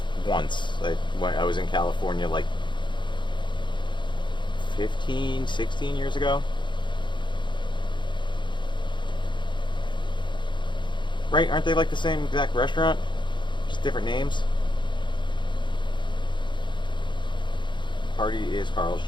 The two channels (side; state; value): right; late; 0.23 ms